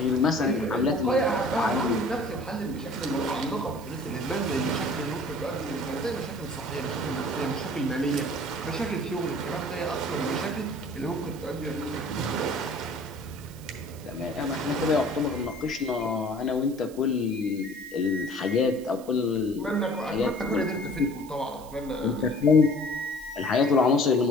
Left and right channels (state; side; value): noise; right; hiss, 21 dB below the sound